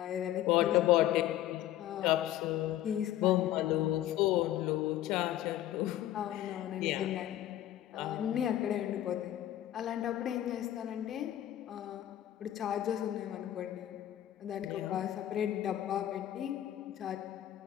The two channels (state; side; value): quieter; right; 12.9 dB